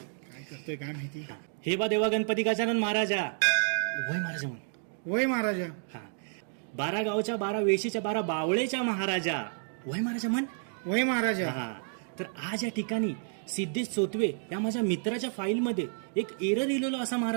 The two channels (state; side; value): silent; left; 58 dB below the other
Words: काय करतोय काय माहिती. हे बा देवा गणपती गजानन महाराजा, वय महाराजा म्हण. वय महाराजा. हा, 12 गावच्या 12 वेशीच्या 12 बावळेच्या महाराजा, वय महाराजा म्हण. वय महाराजा. हा, तर आज या ठिकाणी सिद्धेश चोतवे या माझ्या मित्राच्या फाईलमध्ये एक एरर लिहिलेलो असा